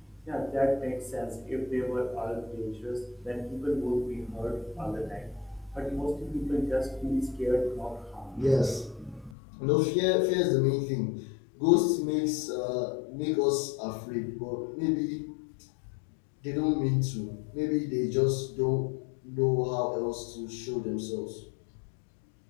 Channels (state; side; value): drops out; right; at 9.3 s